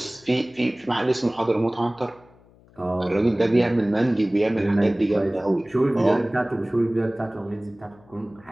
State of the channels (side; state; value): left; noise; hum, 28 dB below the sound